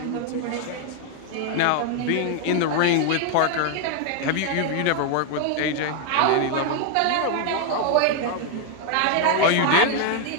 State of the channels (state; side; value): different; both; correlation 0.00